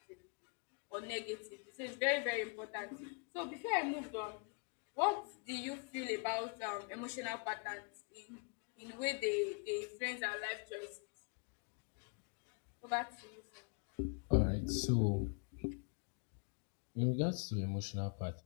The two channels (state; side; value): quieter; right; 38.7 dB